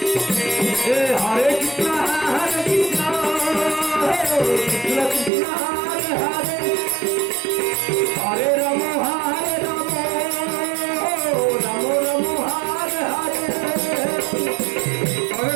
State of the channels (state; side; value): drops out; left; at 5.3 s